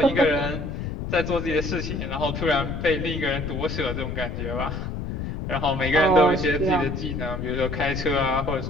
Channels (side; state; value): left; noise; rumble, 5 dB below the sound